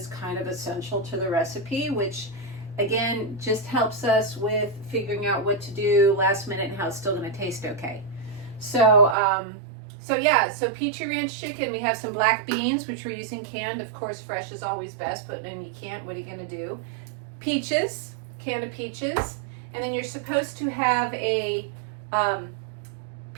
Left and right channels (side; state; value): left; drops out; at 9.2 s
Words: kind of essential to the recipe, which again just helps us with figuring out what to do last minute and how it's still going to taste okay. So Peachy Ranch chicken, we have some black beans, which we're using canned. Of course, fresh is always best, but then you can't, what are you going to do? Peaches, can of peaches, and then you're supposed to have a